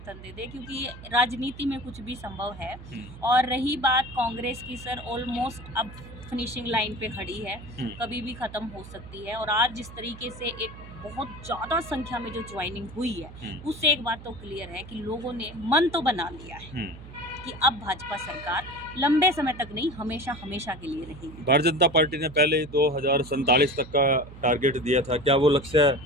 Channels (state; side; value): noise; right; hum, 15 dB below the sound